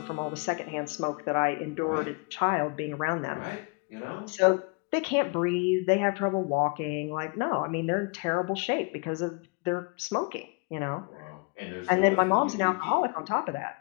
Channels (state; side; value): quieter; right; 31.8 dB